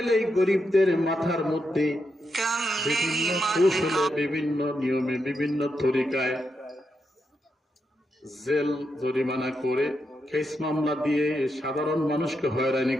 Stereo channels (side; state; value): both; normal; correlation 0.84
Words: গরিবদের মাথার মধ্যে বিভিন্ন কৌশলে, বিভিন্ন নিয়মে, বিভিন্ন তরিকায় জেল জরিমানা করে, কেস মামলা দিয়ে সাধারণ মানুষকে হয়রানি